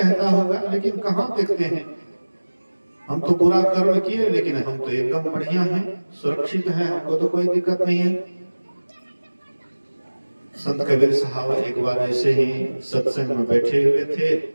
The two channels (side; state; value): both; inverted; correlation -1.00